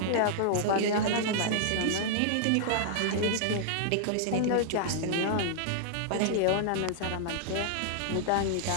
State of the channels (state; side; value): different; both; correlation -0.01